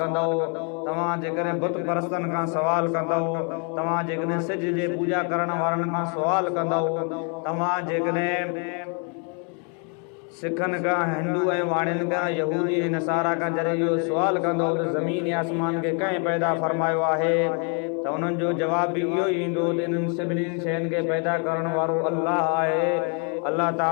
कंदव, तव्हां जेकॾहिं बुत परस्तनि खां सवाल कंदव, तव्हां जेकॾहिं सिज जे पूॼा करण वारनि खां सवाल कंदव, तव्हां जेकॾहिं सिखनि खां, हिंदू ऐं वाणियुनि खां, यहूदी ऐं नसारा खां जॾहिं इहो सुवाल कंदो त ज़मीन आसमान खे कंहिं पैदा फरमायो आहे, त उन्हनि जो जवाब बि इहो ई ईंदो त इन्हनि सभिनी शयुनि खे पैदा करण वारो अल्लाह आहे। अल्लाह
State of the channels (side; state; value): right; quieter; 38.6 dB